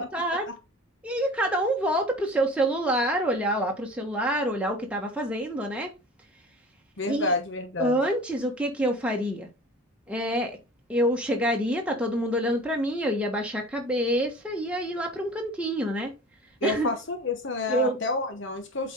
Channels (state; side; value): normal; both; correlation 0.40